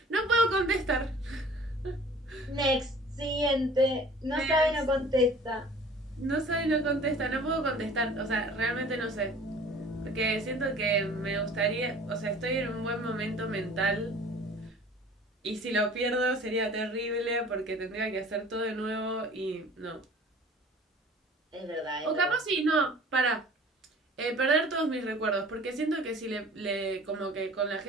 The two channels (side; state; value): both; normal; correlation 0.47